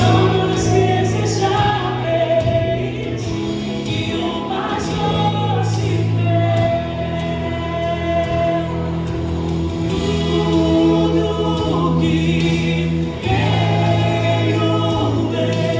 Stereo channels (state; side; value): identical; both; correlation 1.00